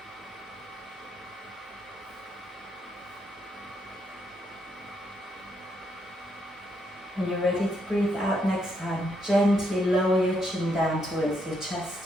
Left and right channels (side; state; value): both; normal; correlation 0.77